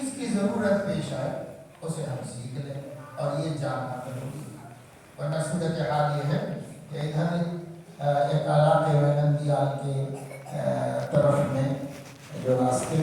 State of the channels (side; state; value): both; identical; correlation 1.00